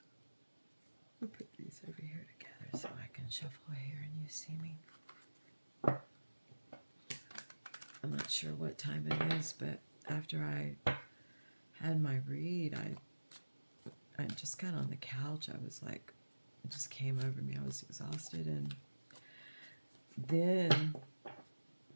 put these over here together so I can shuffle here and you see me. I'm not sure what time it is, but after I had my read, I just got on the couch. I was like, it just came over me. I was exhausted. And then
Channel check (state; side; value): inverted; both; correlation -1.00